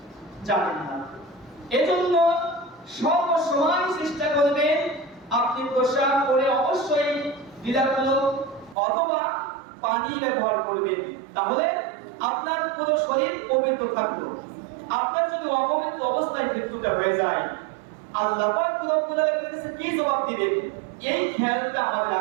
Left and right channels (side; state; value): left; drops out; at 8.8 s